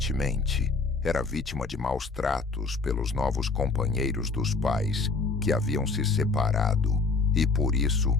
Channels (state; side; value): quieter; right; 4.1 dB